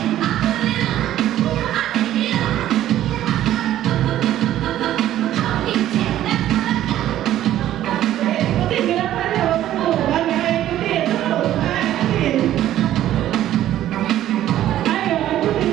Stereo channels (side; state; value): left; quieter; 12.7 dB